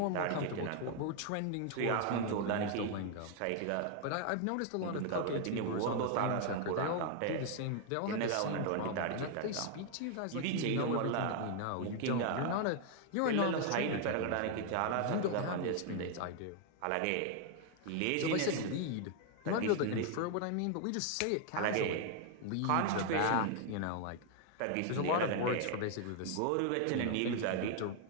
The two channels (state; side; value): different; both; correlation 0.00